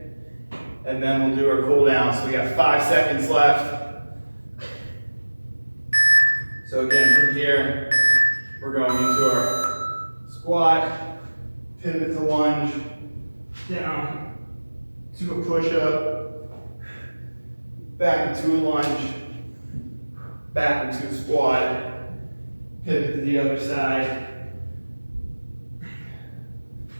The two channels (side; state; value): both; inverted; correlation -1.00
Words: And then we'll do our cool down. So we got 5 seconds left. So again, from here, we're going into our squat, pivot to lunge, down to a push-up, back into a lunge, back into a squat, pivot to the other side.